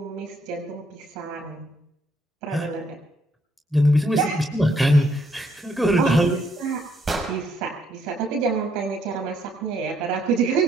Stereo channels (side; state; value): both; normal; correlation 0.71